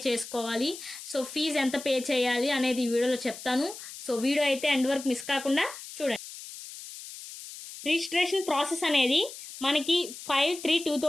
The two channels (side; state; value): left; noise; hiss, 13 dB below the sound